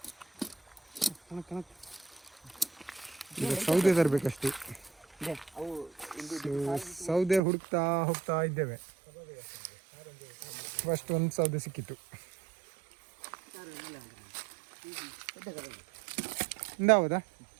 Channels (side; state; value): left; drops out; at 7.4 s